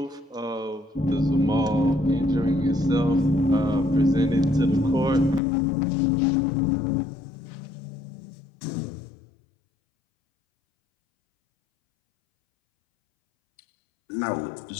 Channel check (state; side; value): drops out; right; at 5.4 s